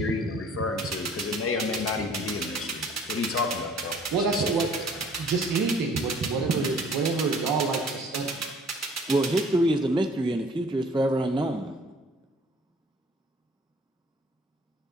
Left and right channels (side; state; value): both; normal; correlation 0.53